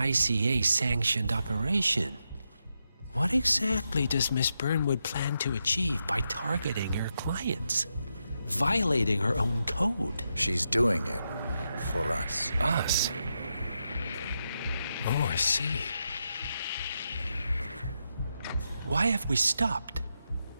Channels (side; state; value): both; inverted; correlation -0.85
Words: operation. What exactly does Miss Burnwood plan to achieve by targeting her clients? Violating her own code? She's doing it for us. Us? Oh, I see. Why have we stopped?